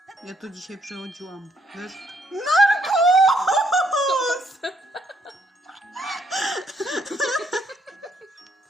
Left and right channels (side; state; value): both; normal; correlation 0.70